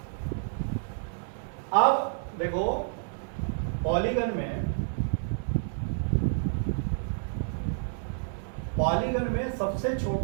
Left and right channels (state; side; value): silent; left; digital silence